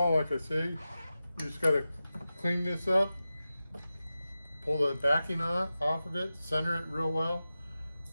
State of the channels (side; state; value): both; inverted; correlation -0.93